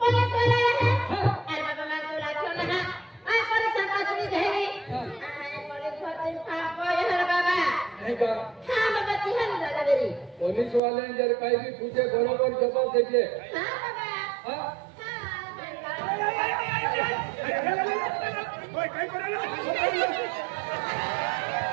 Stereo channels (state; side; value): drops out; left; at 10.8 s